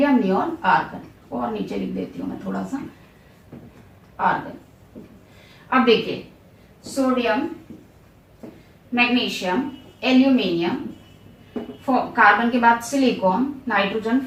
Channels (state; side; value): identical; both; correlation 1.00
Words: नियोन, आर्गन। और नीचे लिख देती हूं मैं थोड़ा सा, आर्गन। अब देखिए सोडियम, मैग्नीशियम, एल्यूमिनियम, कार्बन के बाद silicon, nitrogen,